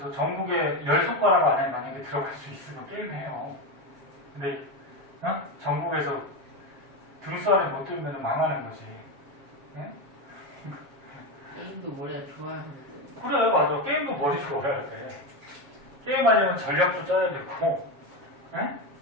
전국에 10손가락 안에 만약에 들어갈 수 있으면 게임해요. 근데 어? 전국에서 등수 안에 못 들면 망하는 거지. 네? 게임도 머리가 좋아야 하는데. 그래 맞아. 게임도 머리 좋아야 돼. 게임하려면 전략도 짜야 되고 네?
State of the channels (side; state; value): left; late; 7.3 ms